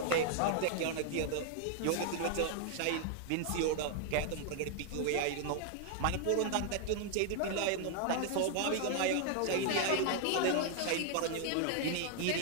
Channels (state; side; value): different; both; correlation 0.00